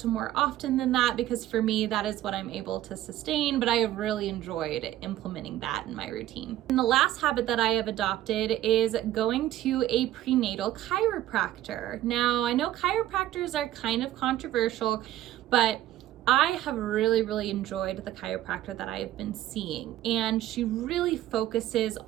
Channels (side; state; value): left; quieter; 13.7 dB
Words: more often than that, because for me, that is what I'm able to sustain, but I have really enjoyed implementing that in my routine. And the last habit that I have adopted is going to a prenatal chiropractor. Now, I know chiropractors are kind of controversial, but I have really enjoyed the chiropractor that I have been seeing, and she really focuses